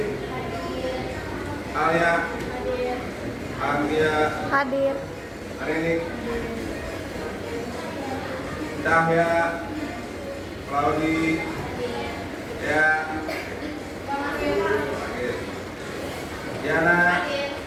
Alia, Anggia, Hadir. Arini, Cahya, Claudi, ya, Diana,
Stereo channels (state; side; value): identical; both; correlation 1.00